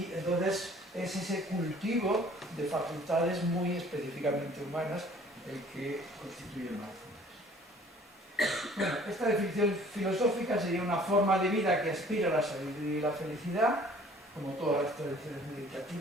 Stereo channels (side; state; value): both; normal; correlation 0.53